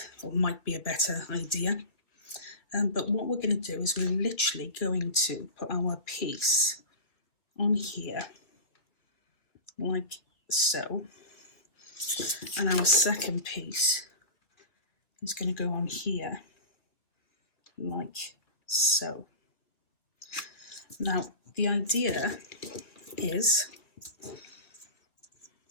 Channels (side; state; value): right; late; 2.3 ms